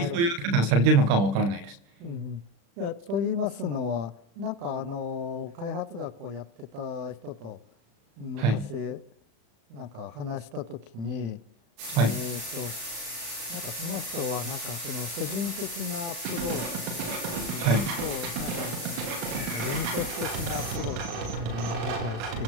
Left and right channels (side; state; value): left; late; 35 ms